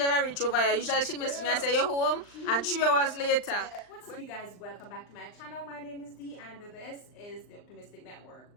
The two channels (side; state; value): right; late; 39 ms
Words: ever reach over here. Usually she miss me and say you're home, and 3 hours later. What's up, you guys? Welcome back to my channel. My name is Dee, and this is the Optimistic Network.